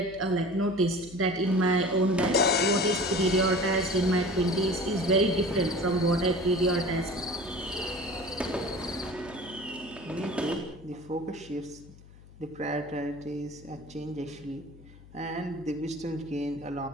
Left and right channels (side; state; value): left; noise; hum, 20 dB below the sound